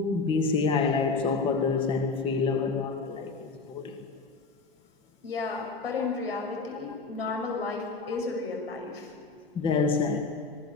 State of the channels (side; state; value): right; quieter; 4.2 dB